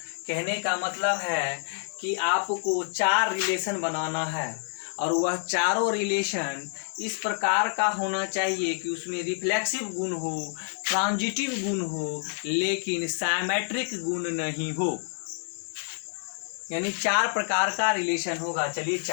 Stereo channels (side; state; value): right; silent; 59 dB below the other